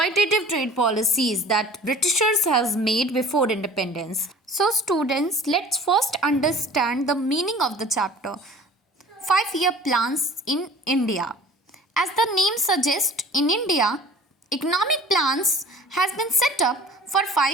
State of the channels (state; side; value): normal; both; correlation 0.45